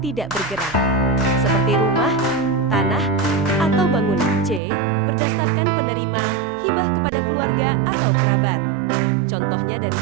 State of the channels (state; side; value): drops out; left; at 4.6 s